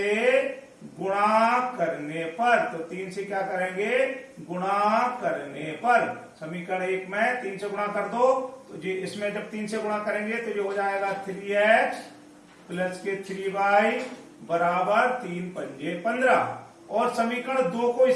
गुणा करने पर, तो 3 से क्या करेंगे? गुणा करने पर। समीकरण 1 में 3 से गुणा कर दो तो जी इसमें जब 3 से गुणा करेंगे तो ये हो जाएगा 3x प्लस के 3y बराबर 3 पंजे 15। और समीकरण 2 को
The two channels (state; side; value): identical; both; correlation 1.00